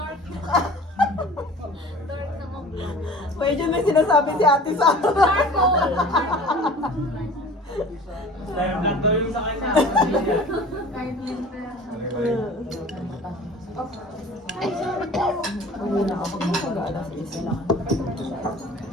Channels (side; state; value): both; normal; correlation 0.43